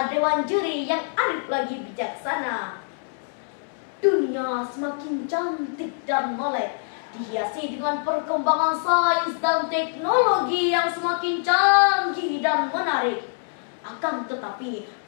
dewan juri yang arif lagi bijaksana. Dunia semakin cantik dan molek, dihiasi dengan perkembangan sains dan teknologi yang semakin canggih dan menarik. Akan tetapi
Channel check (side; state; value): right; silent; 62 dB below the other